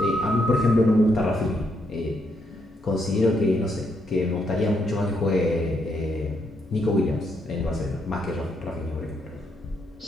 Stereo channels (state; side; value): normal; both; correlation 0.77